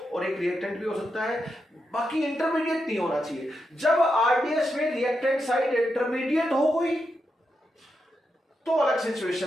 और एक रिएक्टेंट भी हो सकता है, बाकी इंटरमीडिएट नहीं होना चाहिए। जब RDS में रिएक्टेंट साइड इंटरमीडिएट हो गई तो अलग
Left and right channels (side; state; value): both; normal; correlation 0.85